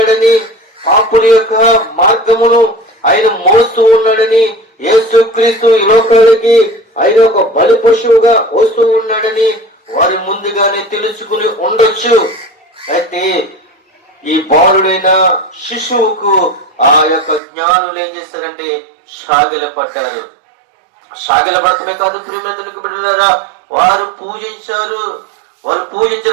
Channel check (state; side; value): drops out; left; at 17.4 s